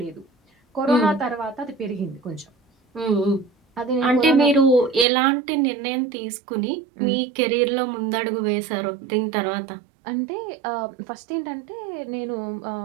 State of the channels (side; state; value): left; drops out; at 5.1 s